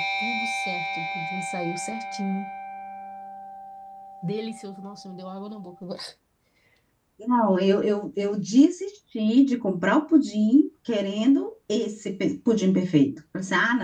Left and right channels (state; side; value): identical; both; correlation 1.00